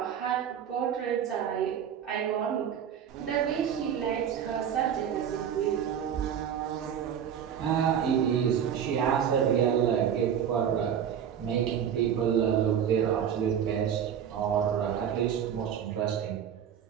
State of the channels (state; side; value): quieter; left; 8.7 dB